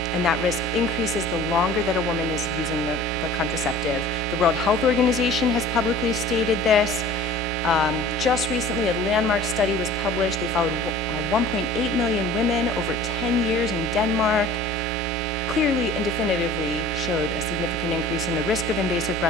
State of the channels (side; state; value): both; normal; correlation 0.44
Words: And that risk increases the longer that a woman is using the contraceptive. The World Health Organization has publicly stated this. Just recently, a landmark study was published. They followed 1.8 million women over 10 years in Denmark. Clearly and definitively showed a significant increase in the risk of invasive